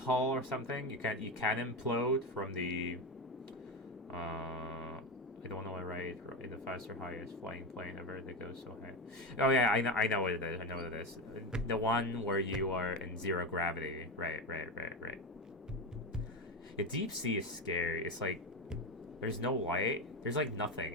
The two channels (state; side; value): normal; both; correlation 0.17